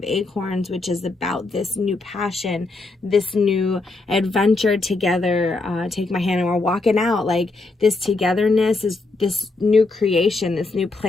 Acorns, which is about this new passion, this new adventure together. Take my hand and we're walking out. Like, this togetherness is this new creation, this new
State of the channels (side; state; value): right; quieter; 3.4 dB